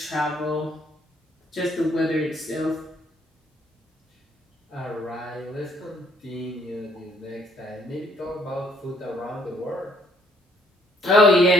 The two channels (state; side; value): normal; both; correlation 0.66